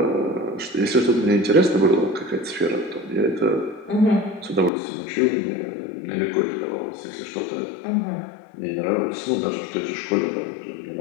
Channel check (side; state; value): right; drops out; at 4.7 s